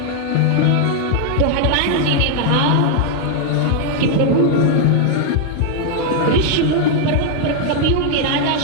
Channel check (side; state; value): both; different; correlation 0.00